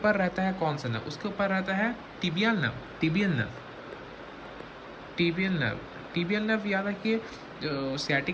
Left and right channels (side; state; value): both; identical; correlation 1.00